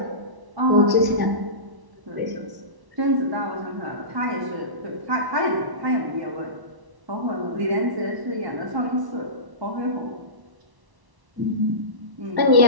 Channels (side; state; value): left; late; 1.1 ms